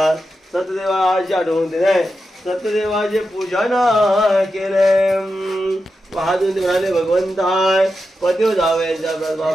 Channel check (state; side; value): normal; both; correlation 0.89